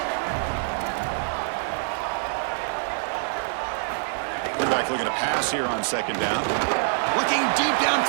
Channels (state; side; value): silent; left; digital silence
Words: Quarterback looking to pass here on second down. Looking deep